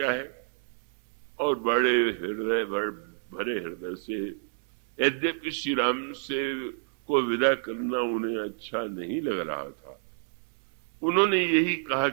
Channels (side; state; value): left; silent; digital silence